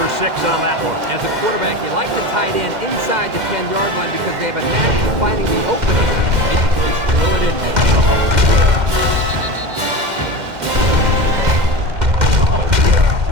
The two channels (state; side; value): late; left; 2.1 ms